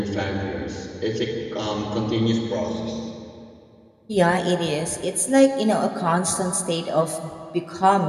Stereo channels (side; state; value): both; identical; correlation 1.00